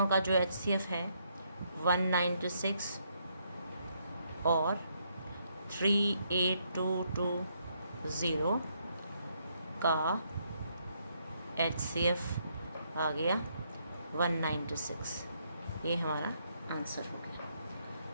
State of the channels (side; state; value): both; inverted; correlation -0.74